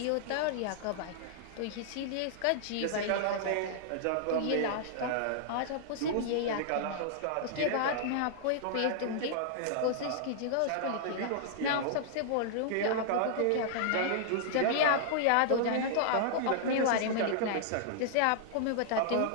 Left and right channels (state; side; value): different; both; correlation -0.01